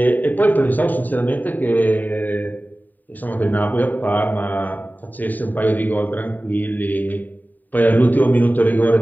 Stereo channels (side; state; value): right; late; 0.087 ms